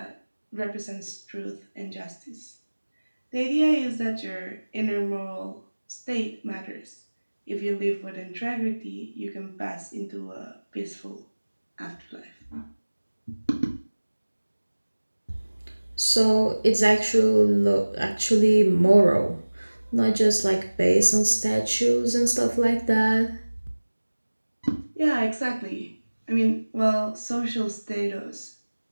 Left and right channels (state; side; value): inverted; both; correlation -1.00